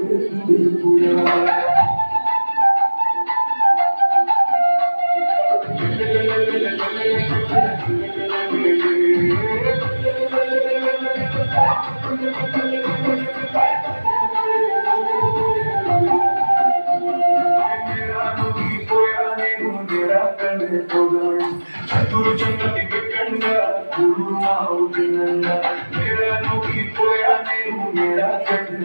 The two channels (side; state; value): both; inverted; correlation -1.00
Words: చతురు చంద్రని పెట్టంగా గురువు అవుతుందంగా మేరా నువ్వు పోయా నేను మేరా